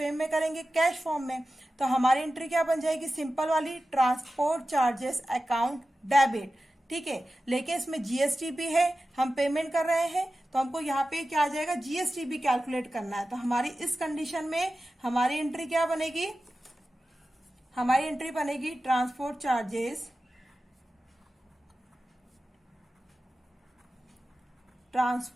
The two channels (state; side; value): normal; both; correlation 0.94